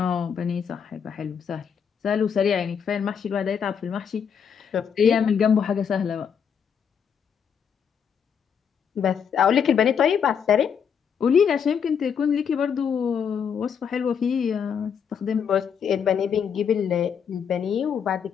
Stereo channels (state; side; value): quieter; right; 7.4 dB